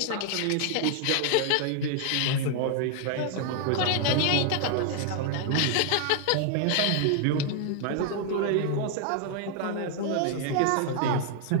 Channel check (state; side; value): different; both; correlation 0.00